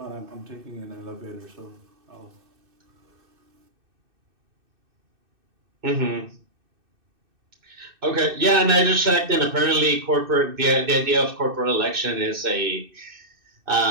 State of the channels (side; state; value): left; late; 2.6 ms